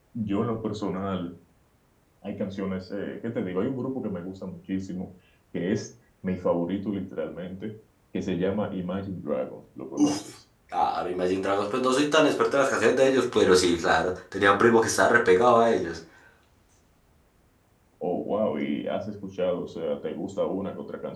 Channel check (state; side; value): identical; both; correlation 1.00